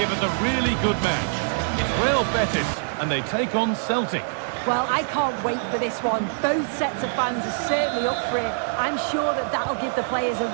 us a really good match. It's Real Betis, and they take on Celtic. Well, I can't wait for this one. Both sets of fans are certainly up for it. I'm sure that that'll give the players a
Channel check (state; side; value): silent; left; digital silence